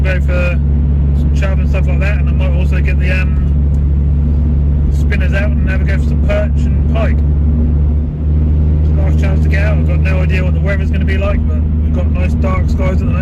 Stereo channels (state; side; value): identical; both; correlation 1.00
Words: go for some chub and stuff like that, and I might also get the spinners out and have a go for some perch and pike. Last chance to get out. I've got no idea what the weather's going to be like, but we've got nice dark skies at the